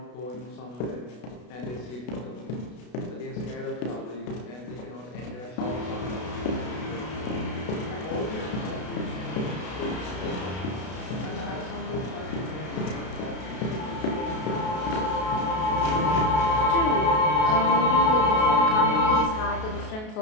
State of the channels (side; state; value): right; late; 33 ms